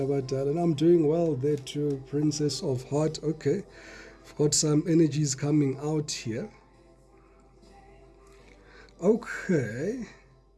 abadala. And I'm doing well there too, Princess of Heart. Okay. I've got some energies coming out here. Okay,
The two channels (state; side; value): identical; both; correlation 1.00